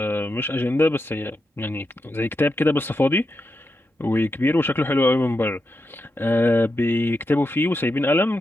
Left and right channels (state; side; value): normal; both; correlation 0.86